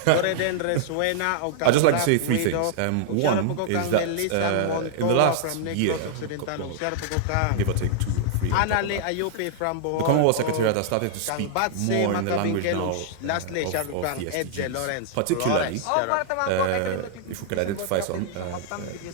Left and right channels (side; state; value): both; different; correlation -0.01